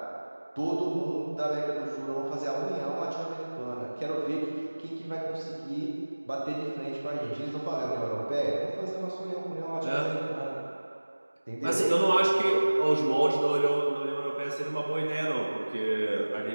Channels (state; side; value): inverted; both; correlation -1.00